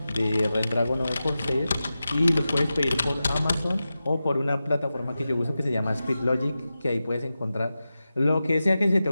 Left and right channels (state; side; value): inverted; both; correlation -0.93